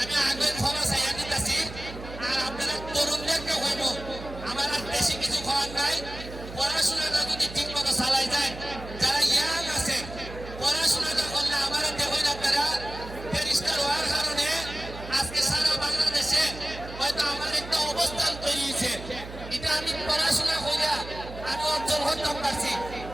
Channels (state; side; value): noise; right; hum, 12 dB below the sound